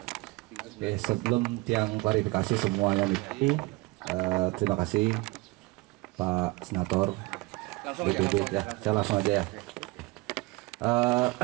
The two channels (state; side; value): quieter; left; 23.1 dB